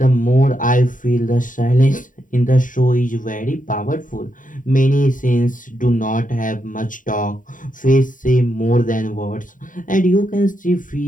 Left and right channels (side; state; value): right; late; 0.38 ms